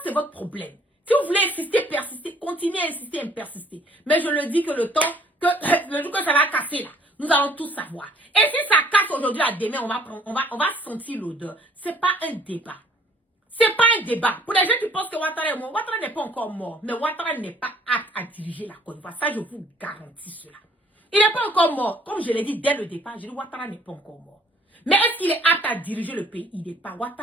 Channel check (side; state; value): both; normal; correlation 0.58